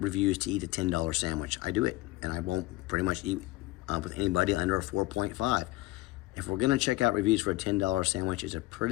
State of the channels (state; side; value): quieter; right; 19.5 dB